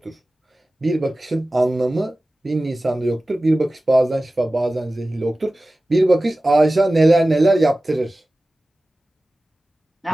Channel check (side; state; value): both; normal; correlation 0.96